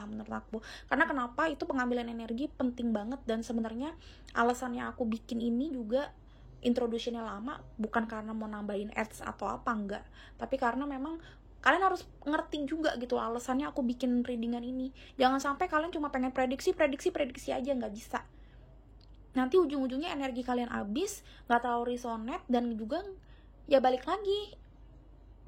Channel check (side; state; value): both; identical; correlation 1.00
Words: menurut aku. Karena kenapa, itu pengambilan energi penting banget. Dan sebenarnya alasannya aku bikin ini juga introduction-nya lama bukan karena mau nambahin ads atau apa, enggak, tapi karena memang kalian harus ngerti juga gitu alasannya aku bikin readingan ini. Jangan sampai kalian cuma pengen prediksi aja, nggak bisa. Nanti ujung-ujungnya energi kalian habis, nggak terlalu resonate, dan juga ya balik lagi